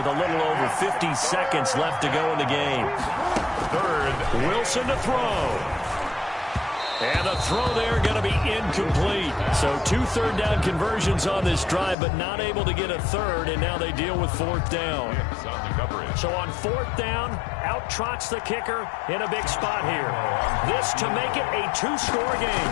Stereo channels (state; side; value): drops out; right; at 12.0 s